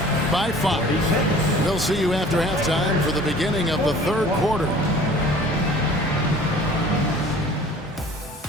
by 5. We'll see you after halftime for the beginning of the third quarter.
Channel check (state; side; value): normal; both; correlation 0.48